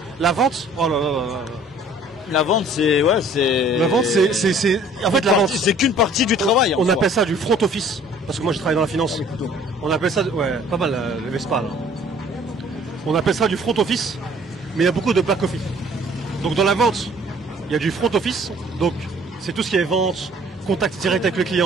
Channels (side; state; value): both; normal; correlation 0.55